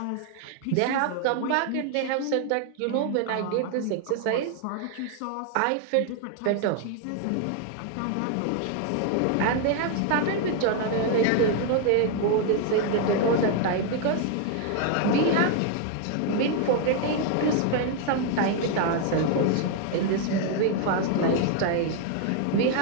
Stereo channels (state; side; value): different; both; correlation 0.00